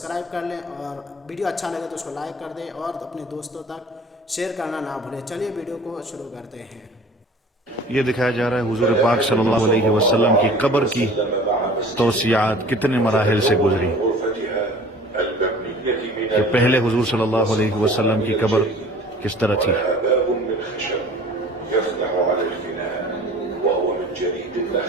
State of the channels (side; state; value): both; normal; correlation 0.46